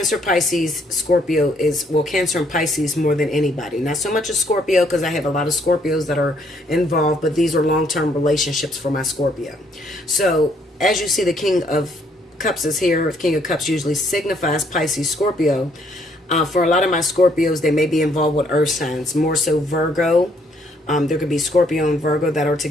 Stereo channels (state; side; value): normal; both; correlation 0.68